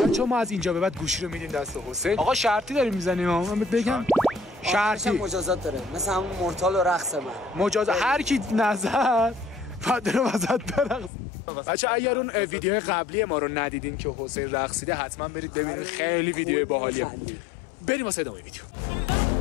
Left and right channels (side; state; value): right; drops out; at 11.1 s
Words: چون ما از اینجا به بعد گوشی رو میدیم دست حسین. آقا شرطی داریم میزنیم. من بگم شرطی مجازات داره، مثل همون مورتال و رقص من. مجازات هر کی نظر فدر وسط برقص. بچه اگر اون ویدیو قبلی ما رو ندیدین که حسین رقصیده حتما برید ببینید، خیلی ویدیو باحالیه. بریم واسه ادامه ویدیو.